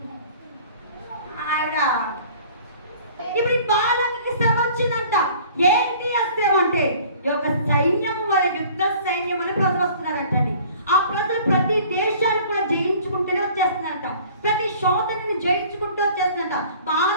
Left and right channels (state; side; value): inverted; both; correlation -0.50